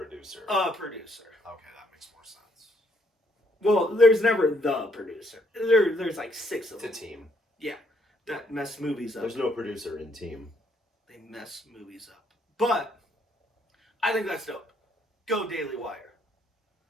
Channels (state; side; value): normal; both; correlation 0.70